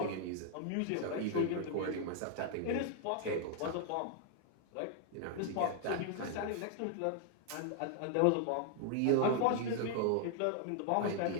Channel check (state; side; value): different; both; correlation 0.00